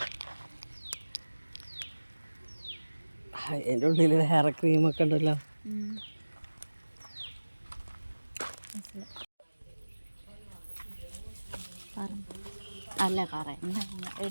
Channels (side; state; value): both; inverted; correlation -1.00